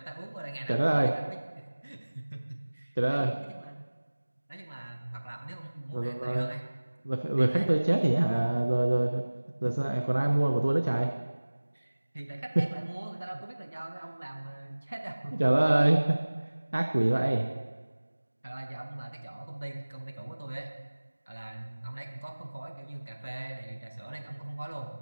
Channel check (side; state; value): both; inverted; correlation -1.00